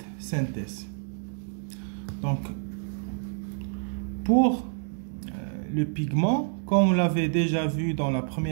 synthèse. Donc pour le pigment, comme on l'avait déjà vu dans la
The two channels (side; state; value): left; silent; digital silence